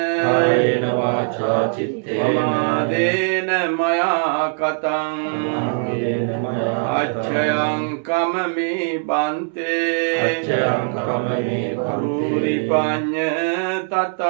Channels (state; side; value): silent; left; 65 dB below the other